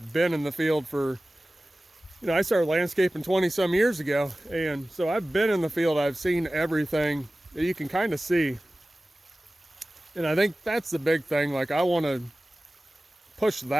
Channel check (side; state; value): both; normal; correlation 0.97